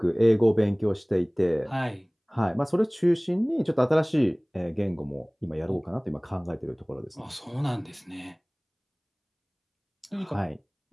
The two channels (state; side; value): identical; both; correlation 1.00